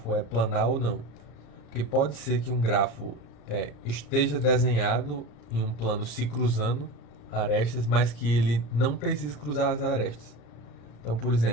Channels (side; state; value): right; late; 34 ms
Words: é planar ou não? Porque pode ser que um grafo esteja desenhado em um plano se cruzando arestas, mas que ele não precise cruzar as arestas. Então, por